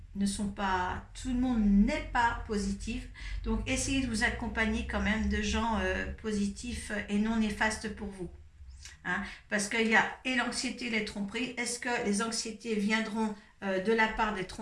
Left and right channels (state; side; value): identical; both; correlation 1.00